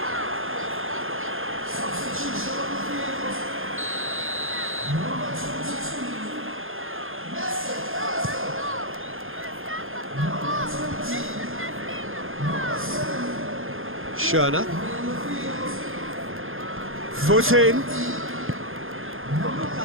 Schöner. Foot in. Luka,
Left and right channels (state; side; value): late; left; 0.60 ms